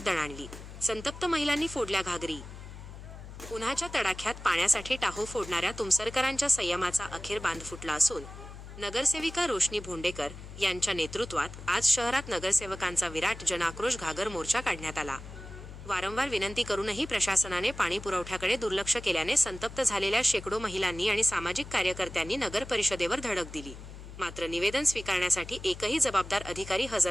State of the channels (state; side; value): noise; left; hum, 13 dB below the sound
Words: दणाणली. संतप्त महिलांनी फोडल्या घागरी. उन्हाच्या तडाख्यात पाण्यासाठी टाहो फोडणाऱ्या तुमसरकरांच्या संयमाचा अखेर बांध फुटला असून नगरसेविका रोशनी भोंडेकर यांच्या नेतृत्वात आज शहरात नगरसेवकांचा विराट जनाक्रोश घागर मोर्चा काढण्यात आला. वारंवार विनंती करूनही प्रशासनाने पाणी पुरवठ्याकडे दुर्लक्ष केल्याने संतप्त झालेल्या शेकडो महिलांनी आणि सामाजिक कार्यकर्त्यांनी नगर परिषदेवर धडक दिली. मात्र निवेदन स्वीकारण्यासाठी एकही जबाबदार अधिकारी